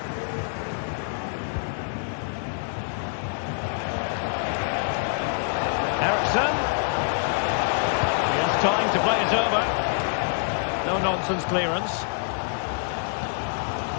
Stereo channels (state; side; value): silent; right; digital silence